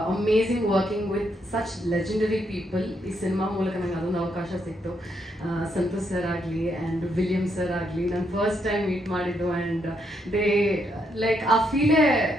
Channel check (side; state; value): both; normal; correlation 0.77